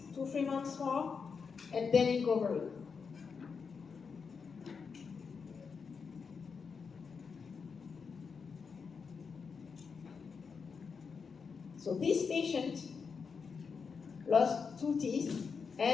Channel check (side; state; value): right; quieter; 5.6 dB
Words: months more, and then you cover it. So this patient lost 2 teeth,